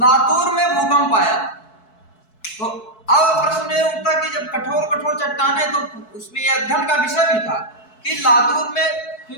में भूकंप आया। तो अब प्रश्न ये उठता कि जब कठोर कठोर चट्टाने, तो उसमें यह अध्ययन का विषय भी था कि लातूर में,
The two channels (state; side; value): late; right; 4.6 ms